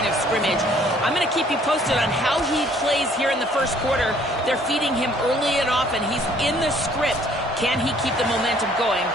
of scrimmage. I'm going to keep you posted on how he plays here in the first quarter. They're feeding him early and often. He's in the script. Can he keep the momentum going?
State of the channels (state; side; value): normal; both; correlation 0.60